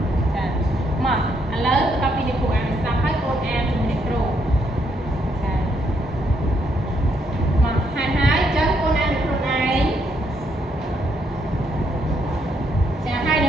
ចាមកឥឡូវបន្តពីលោកគ្រូអានស្ដាប់ហើយកូនអានជាមួយអ្នកគ្រូចាមកហើយចឹងកូនអានខ្លួនឯងចាហើយន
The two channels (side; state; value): both; normal; correlation 0.74